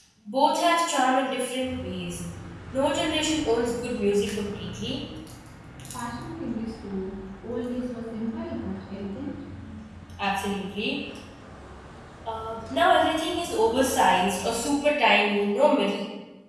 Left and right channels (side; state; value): both; identical; correlation 1.00